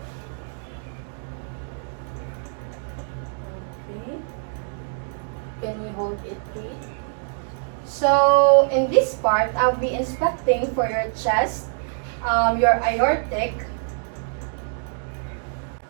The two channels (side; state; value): left; silent; digital silence